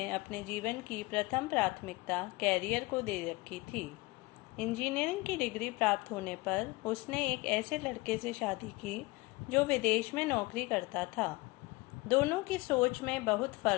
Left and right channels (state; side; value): quieter; right; 22.8 dB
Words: अपने जीवन की प्रथम प्राथमिकता कैरियर को दे रखी थी। इंजीनियरिंग की डिग्री प्राप्त होने पर उसने एक ऐसे लड़के से शादी की जो विदेश में नौकरी करता था। दोनों की सोच में बहुत